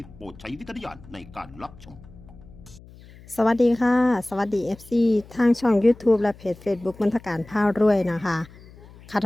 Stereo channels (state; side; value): noise; left; hum, 21 dB below the sound